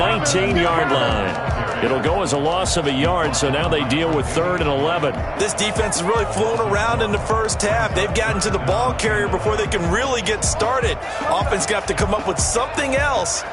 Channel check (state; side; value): identical; both; correlation 1.00